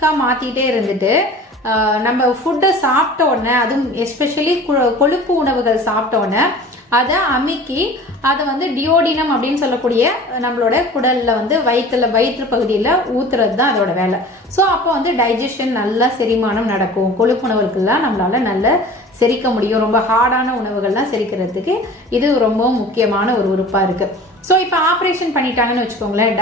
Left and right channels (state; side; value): normal; both; correlation 0.41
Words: மாத்திட்டே இருந்துட்டு நம்ம ஃபுட்டை சாப்பிட்ட உடனே, அதுவும் எஸ்பெஷலி கொழுப்பு உணவுகள் சாப்பிட்ட உடனே அதை அமுக்கி அதை டியோடினம் அப்படின்னு சொல்லக்கூடிய நம்மளோட குடல்ல வயிற்று பகுதியில் ஊத்துறது தான் அதோட வேலை. ஸோ அப்போ டைஜஷன் நல்லா செரிமானம் நடக்கும். கொழுப்பு உணவுகள்லாம் நம்மளால நல்ல செரிக்க முடியும். ரொம்ப ஹார்டான உணவுகள்லாம் செரிக்கிறதுக்கு இது ரொம்ப முக்கியமான ஒரு உறுப்பா இருக்கு. ஸோ இப்போ ஆப்ரேஷன் பண்ணிட்டாங்கன்னு வச்சுக்கோங்களேன்,